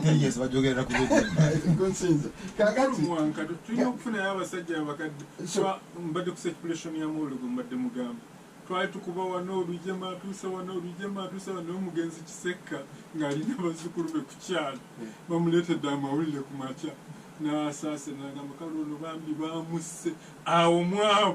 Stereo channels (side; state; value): both; identical; correlation 1.00